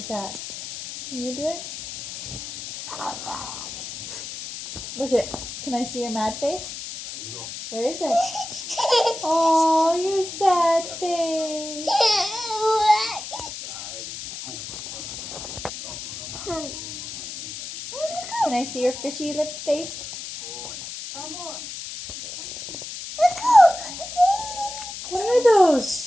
that. Can you do it? Look at. Can I see your mad face? Where is it? Oh, your sad face. Can I see your fishy lip face? What are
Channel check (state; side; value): noise; left; hiss, 9 dB below the sound